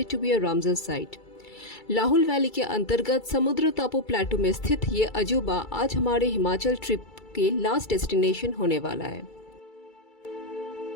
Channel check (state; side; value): late; right; 2.3 ms